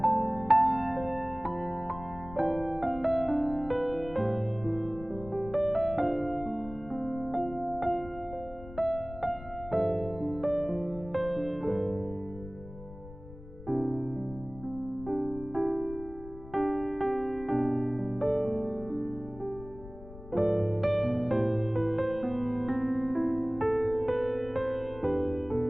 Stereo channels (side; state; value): left; noise; rumble, 16 dB below the sound